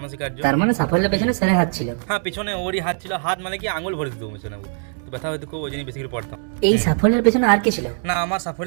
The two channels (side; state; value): left; silent; 58 dB below the other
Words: তার মানে সাফল্যের পেছনে স্যারের হাত ছিল। হ্যাঁ পিছনে ওরই হাত ছিল, হাত মানে কি আঙুল ভরে দিত পেছনে, তো ব্যথা হয়তো খুব, ওই জন্য বেশি করে পড়তাম। এই সাফল্যের পেছনে আর কে ছিল? না আমার